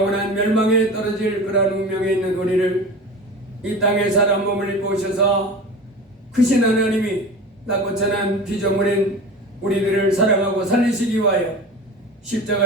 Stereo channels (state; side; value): normal; both; correlation 0.32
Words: 멸망에 떨어질 그러한 운명에 있는 우리를 이 땅에 사람 몸을 입고 오셔서 크신 하나님이 낮고 천한 피조물인 우리들을 사랑하고 살리시기 위하여